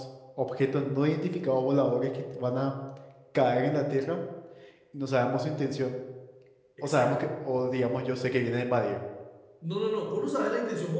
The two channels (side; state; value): both; identical; correlation 1.00